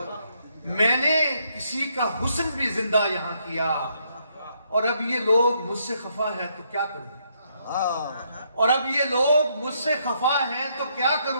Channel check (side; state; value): both; inverted; correlation -0.74